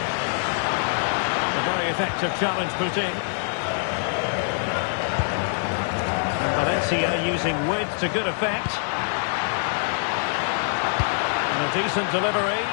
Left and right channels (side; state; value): right; silent; digital silence